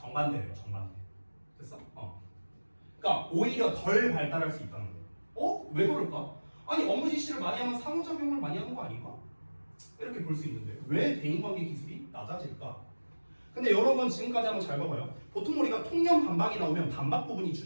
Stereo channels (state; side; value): inverted; both; correlation -1.00